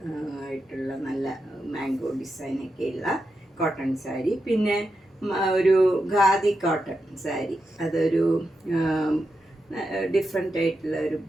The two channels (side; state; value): both; normal; correlation 0.87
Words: ആയിട്ടുള്ള നല്ല മാംഗോ ഡിസൈനൊക്കെയുള്ള കോട്ടൺ സാരി. പിന്നെ ഒരു ഖാദി കോട്ടൺ സാരി, അതൊരു ഡിഫറെൻ്റ് ആയിട്ടുള്ള ഒരു